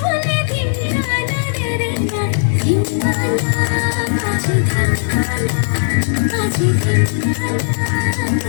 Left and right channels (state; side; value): silent; right; digital silence